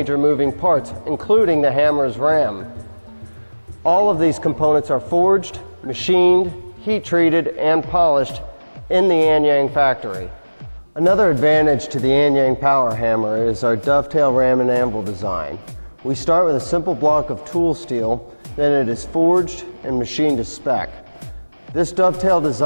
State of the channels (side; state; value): both; inverted; correlation -1.00